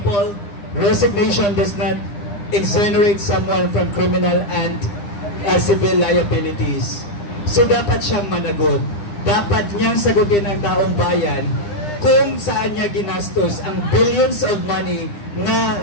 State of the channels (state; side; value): late; right; 9.9 ms